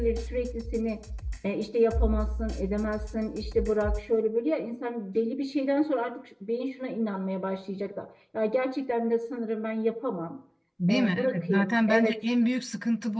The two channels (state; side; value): identical; both; correlation 1.00